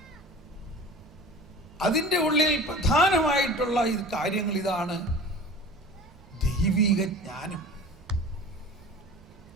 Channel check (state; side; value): normal; both; correlation 0.39